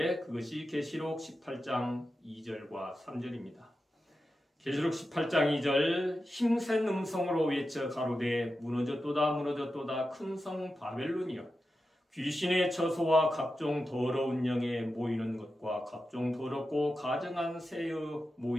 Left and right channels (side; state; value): both; normal; correlation 0.91